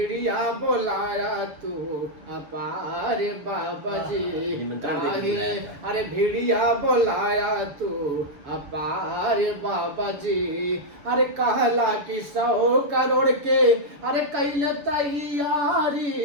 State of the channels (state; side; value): late; left; 6.8 ms